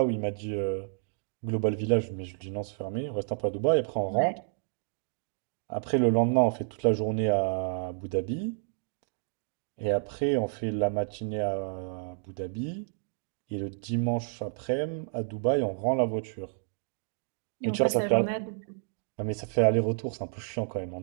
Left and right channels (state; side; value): silent; left; digital silence